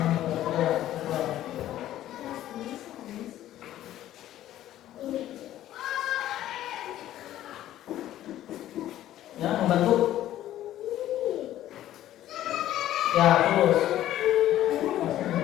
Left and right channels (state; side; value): quieter; right; 13.1 dB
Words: Ya, membantu. Ya, terus.